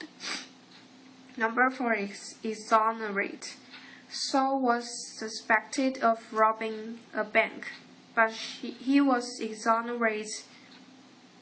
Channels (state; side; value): identical; both; correlation 1.00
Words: Number 4 is exonerate. Saul was suspected of robbing a bank, but he was exonerated